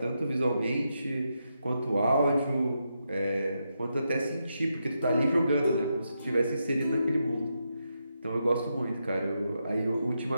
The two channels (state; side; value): inverted; both; correlation -0.84